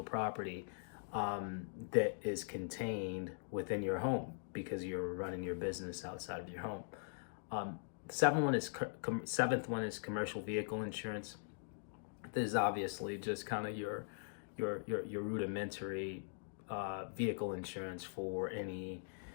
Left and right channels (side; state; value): right; silent; digital silence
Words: property that is contained within your home because you're running your business outside of your home. Seventh one is commercial vehicle insurance. This is obviously just kind of your rudimentary vehicle insurance for any